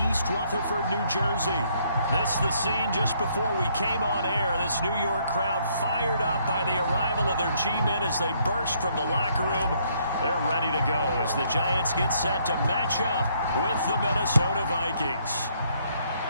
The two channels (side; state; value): both; inverted; correlation -0.68